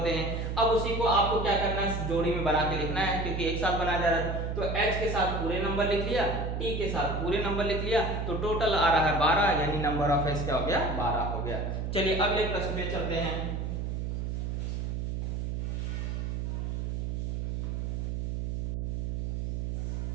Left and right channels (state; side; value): noise; right; hum, 2 dB below the sound